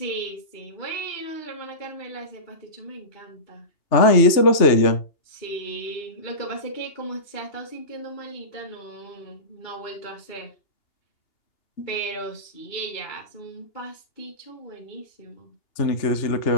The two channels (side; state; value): right; late; 2.8 ms